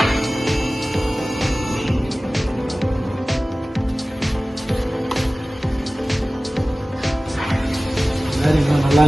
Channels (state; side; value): normal; both; correlation 0.97